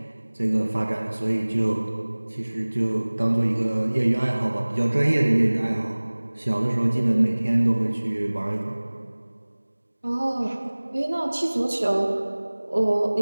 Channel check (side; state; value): both; inverted; correlation -1.00